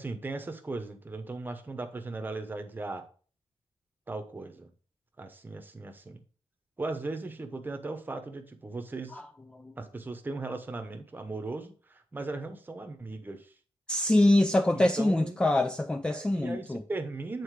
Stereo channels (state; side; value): normal; both; correlation 0.91